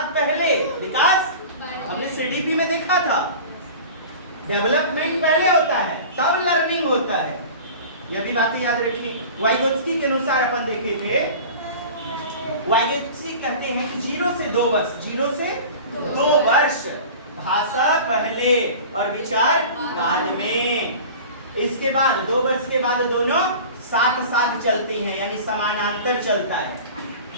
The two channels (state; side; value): inverted; both; correlation -0.38